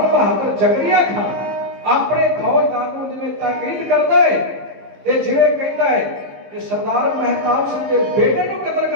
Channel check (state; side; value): late; left; 15 ms